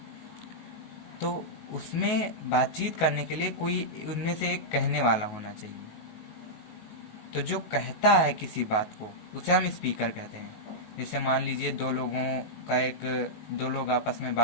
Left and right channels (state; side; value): late; right; 19 ms